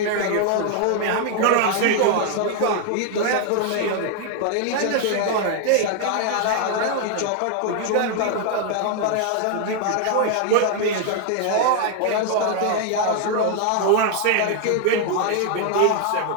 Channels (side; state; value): both; different; correlation 0.00